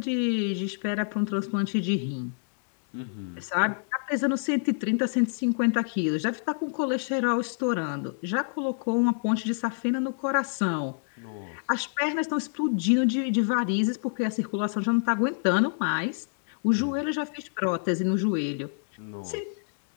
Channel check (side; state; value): right; silent; digital silence